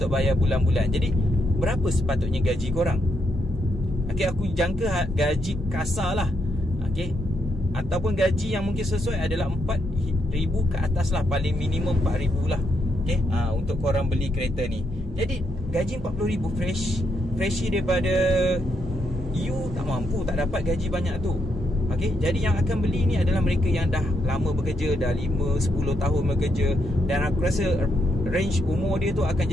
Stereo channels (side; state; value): both; normal; correlation 0.78